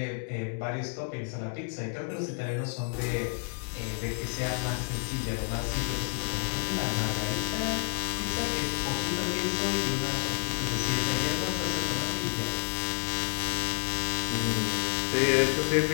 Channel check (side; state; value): right; silent; digital silence